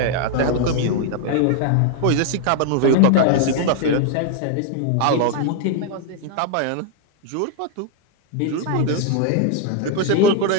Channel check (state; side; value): different; both; correlation 0.00